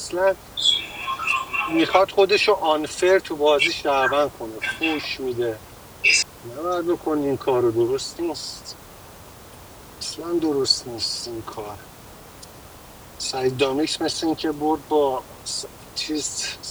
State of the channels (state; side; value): identical; both; correlation 1.00